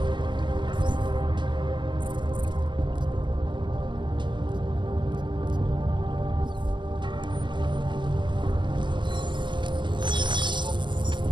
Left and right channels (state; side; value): late; left; 0.22 ms